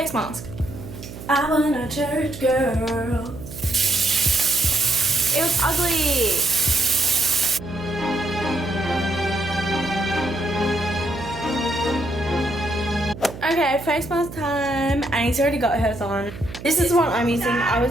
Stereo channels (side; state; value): right; noise; hum, 13 dB below the sound